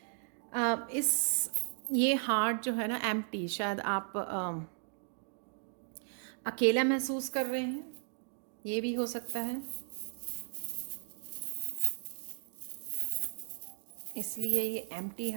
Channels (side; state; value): left; silent; 54 dB below the other